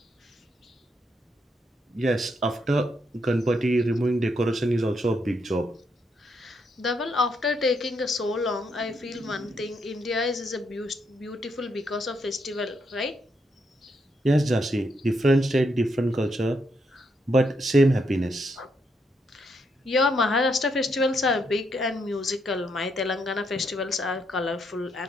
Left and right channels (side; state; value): both; normal; correlation 0.77